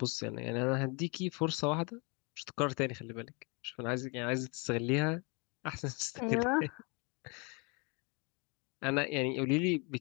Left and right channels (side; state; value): right; quieter; 31.4 dB